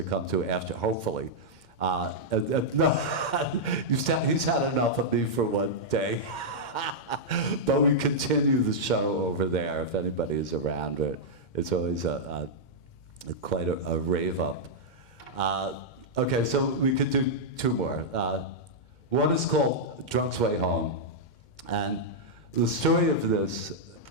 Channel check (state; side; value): late; right; 2.1 ms